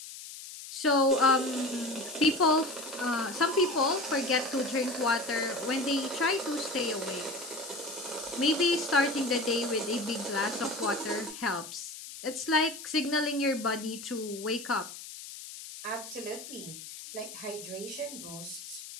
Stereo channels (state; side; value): noise; left; hiss, 12 dB below the sound